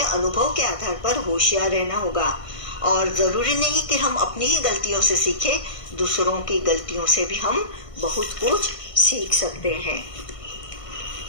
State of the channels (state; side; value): late; right; 1.5 ms